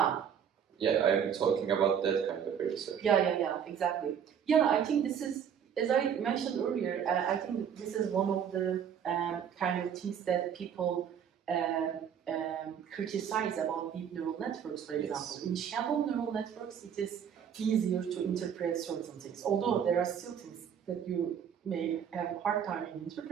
Yeah, I'm talking about that kind of research. Yeah, exactly. Yeah, I think this is, as I mentioned earlier, I think this is one of the kind of things that people criticize about deep neural networks, for example. Yes. In shallow neural networks, it is easier to interpret certain things, although there are still things that you may have a hard time in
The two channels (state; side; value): quieter; left; 8.3 dB